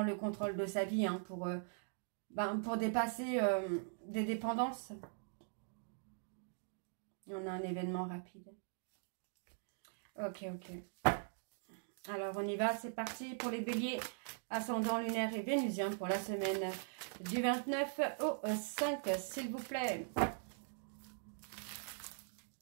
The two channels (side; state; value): left; silent; digital silence